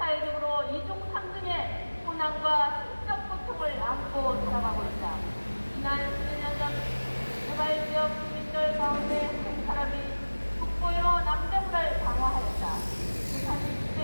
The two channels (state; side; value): inverted; both; correlation -1.00